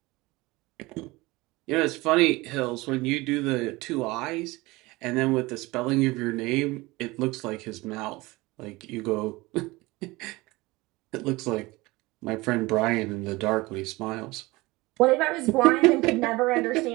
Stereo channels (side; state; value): left; quieter; 21.7 dB